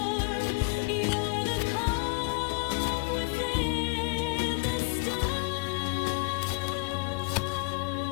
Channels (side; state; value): right; quieter; 31.5 dB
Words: you're the calm within the storm.